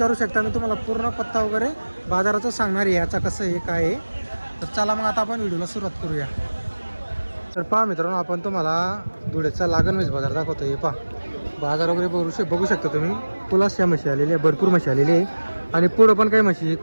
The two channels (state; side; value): inverted; both; correlation -1.00